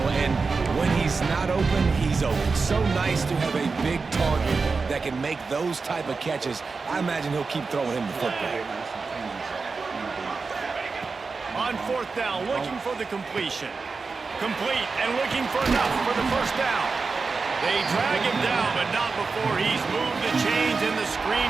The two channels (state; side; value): quieter; left; 4.4 dB